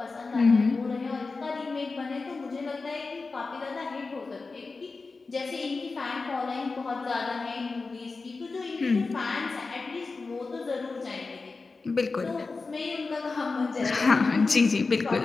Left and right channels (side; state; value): right; quieter; 4.0 dB